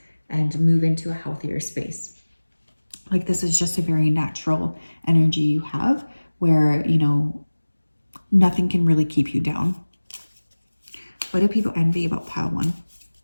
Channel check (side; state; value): both; inverted; correlation -1.00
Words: and move into a healthier space. Like this is just a very natural energy you have where, you know, nothing can really keep you down. What do people envy about pile 1?